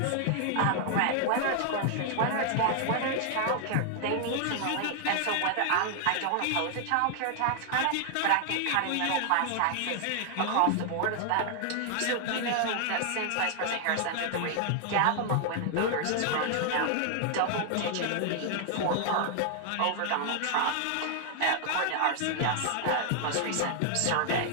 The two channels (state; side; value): different; both; correlation 0.00